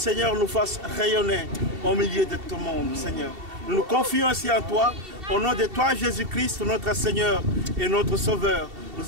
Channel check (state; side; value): late; left; 2.7 ms